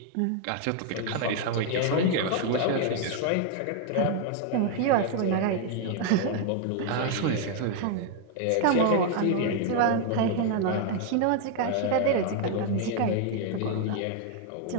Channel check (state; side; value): different; both; correlation 0.00